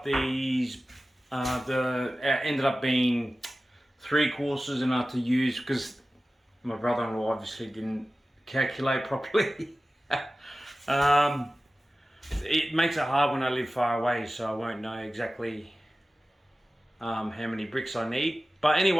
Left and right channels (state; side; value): normal; both; correlation 0.96